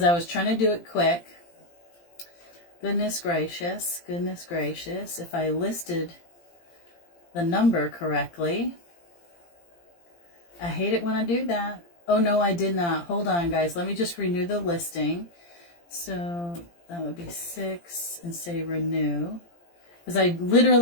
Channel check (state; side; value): late; right; 17 ms